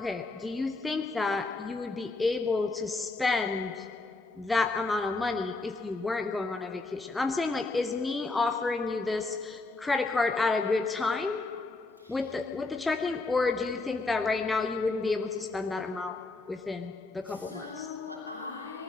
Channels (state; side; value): quieter; right; 3.4 dB